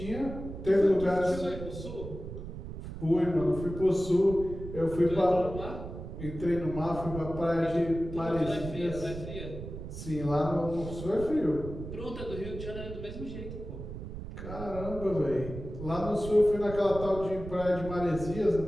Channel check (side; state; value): right; noise; rumble, 10 dB below the sound